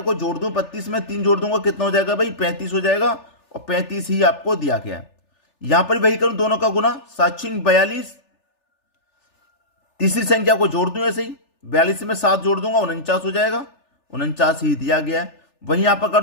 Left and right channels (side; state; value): right; late; 3.4 ms